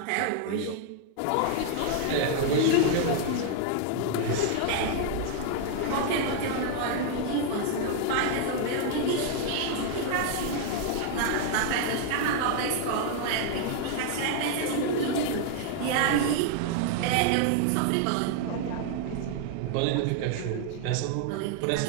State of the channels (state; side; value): different; both; correlation 0.00